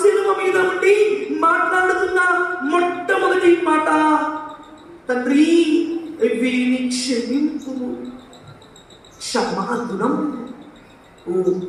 శిలువ మీద ఉండి మాట్లాడుతున్న మొట్టమొదటి మాట, తండ్రి వీరిని క్షమింపుము. క్షమాగుణం ఓ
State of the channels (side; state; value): both; identical; correlation 1.00